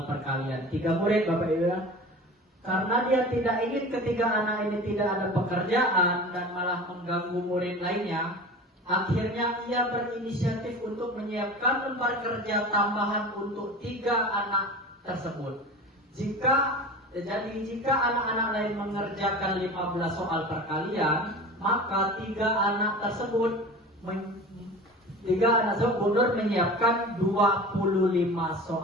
perkalian. 3 murid Bapak Ibu ya. Karena dia tidak ingin ketiga anak ini tidak ada pekerjaan dan malah mengganggu murid lainnya, akhirnya ia berinisiatif untuk menyiapkan lembar kerja tambahan untuk 3 anak tersebut. Jika anak-anak lain mengerjakan 15 soal perkalian, maka 3 anak tersebut Bu Nur menyiapkan 25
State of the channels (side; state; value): both; normal; correlation 0.35